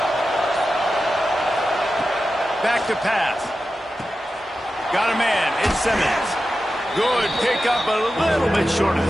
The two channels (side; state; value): both; normal; correlation 0.92